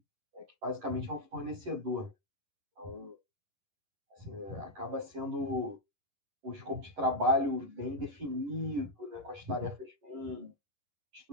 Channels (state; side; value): late; left; 11 ms